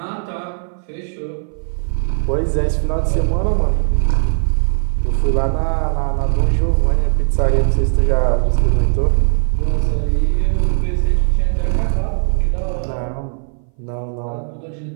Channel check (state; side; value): silent; left; 61 dB below the other